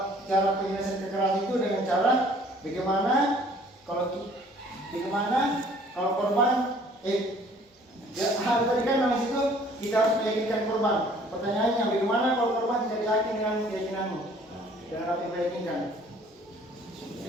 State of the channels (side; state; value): both; normal; correlation 0.56